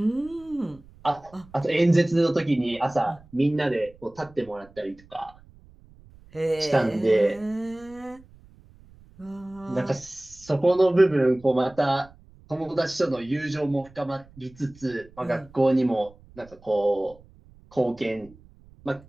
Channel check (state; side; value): noise; right; rumble, 25 dB below the sound